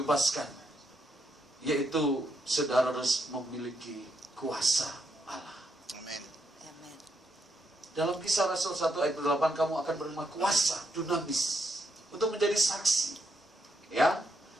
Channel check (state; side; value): normal; both; correlation 0.78